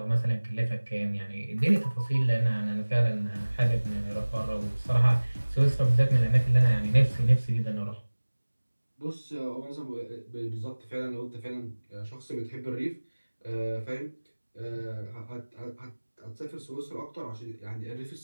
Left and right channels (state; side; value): inverted; both; correlation -1.00